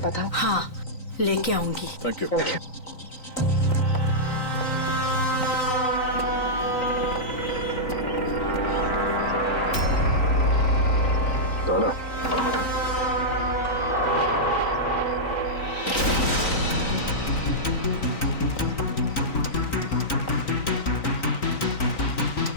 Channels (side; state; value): right; late; 3.9 ms